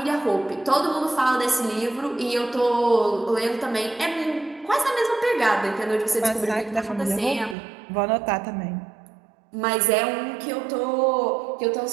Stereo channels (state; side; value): drops out; left; at 7.6 s